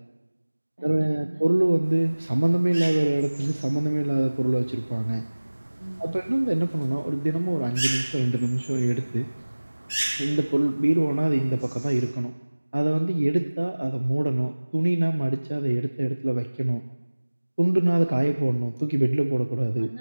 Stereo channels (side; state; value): both; inverted; correlation -1.00